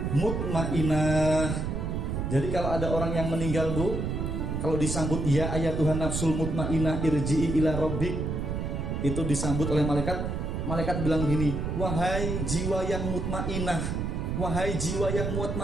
mutmainah. Jadi kalau ada orang yang meninggal, Bu, kalau disambut ya ayyatuhan nafsul mutmainah irji'i ila rabbik, itu disambut oleh malaikat. Malaikat bilang gini, wahai jiwa yang mutmainah, wahai jiwa yang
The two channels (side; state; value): right; noise; rumble, 2 dB below the sound